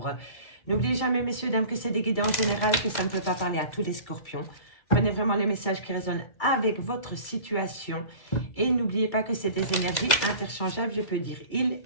N'oubliez jamais, messieurs, dames, que c'est des guidances générales, que ça ne peut pas parler à tous les Scorpions. Prenez vraiment les messages qui résonnent avec votre situation. Et n'oubliez pas que c'est des énergies interchangeables, je peux dire il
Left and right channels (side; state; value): right; late; 2.0 ms